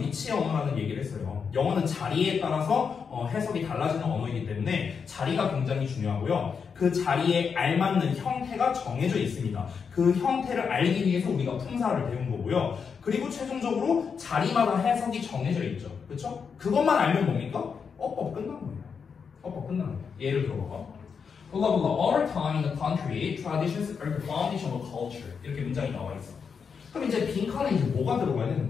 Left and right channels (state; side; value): quieter; right; 6.1 dB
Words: 위치 언어라는 얘기를 했어요. 영어는 자리에 따라서 해석이 달라지는 언어이기 때문에 자리가 굉장히 중요하고요. 그 자리에 알맞는 형태가 정해져 있습니다. 그 형태를 알기 위해서 우리가 품사를 배운 거고요. 그리고 최종적으로 자리마다 해석이 정해져 있죠. 그렇죠? 그것만 알면 뭡니까? 어법 끝난 거예요. 어법 끝난 거예요. 예를 들어봐. blah blah blah. All time in the country, traditions are the foundation of culture. 이렇게 문장이 나와 있어. 그럼 이제 빈칸에 이제 뭐가 들어가야